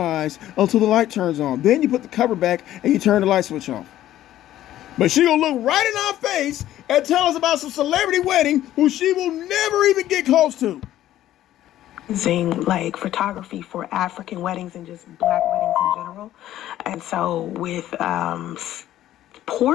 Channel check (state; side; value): quieter; right; 13.2 dB